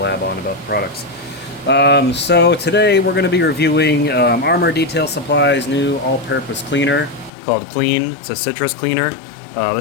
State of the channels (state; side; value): drops out; right; at 7.3 s